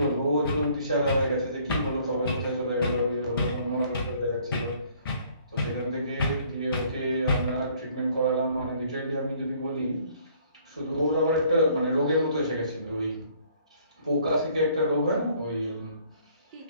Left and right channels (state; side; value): inverted; both; correlation -0.60